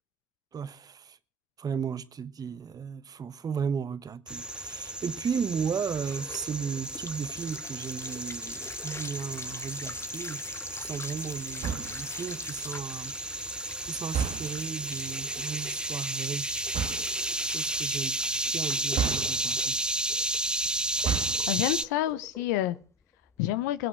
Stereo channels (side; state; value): both; normal; correlation 0.25